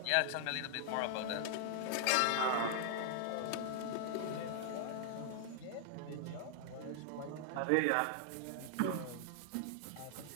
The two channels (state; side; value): different; both; correlation 0.00